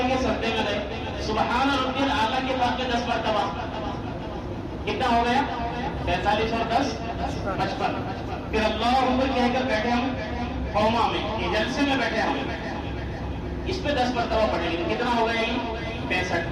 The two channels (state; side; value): identical; both; correlation 1.00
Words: گے سجدے میں رہے، سبحان ربی الاعلیٰ کے بعد میں 10 مرتبہ، کتنا ہو گیا 45 اور 10 55۔ پھر اللہ اکبر کہہ کر بیٹھے ہم قوما میں، یہ جلسے میں بیٹھے ہم، اس پہ 10 مرتبہ پڑھیں گے، کتنا ہو گیا یہ